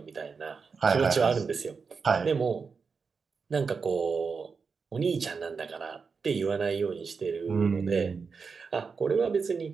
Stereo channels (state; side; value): quieter; left; 5.2 dB